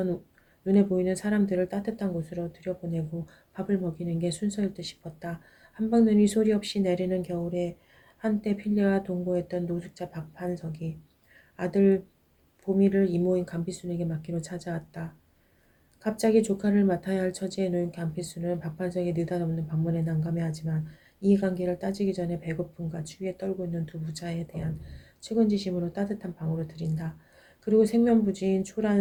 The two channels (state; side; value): identical; both; correlation 1.00